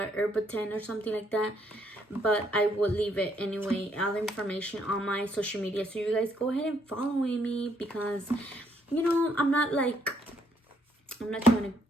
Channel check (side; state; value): both; normal; correlation 0.69